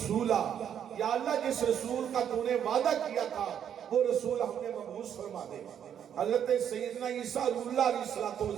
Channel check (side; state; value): left; quieter; 9.0 dB